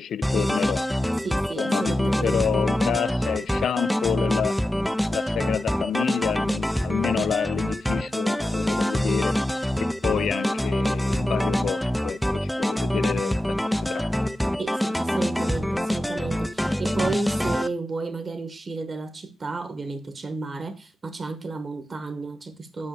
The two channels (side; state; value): both; normal; correlation 0.91